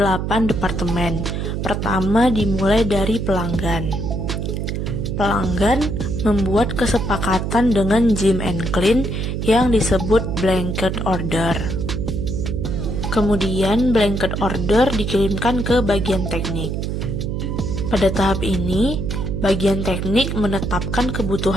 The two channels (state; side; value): noise; right; hum, 2 dB below the sound